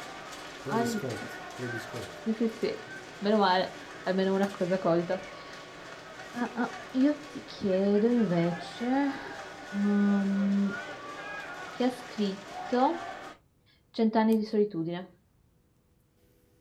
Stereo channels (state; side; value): identical; both; correlation 1.00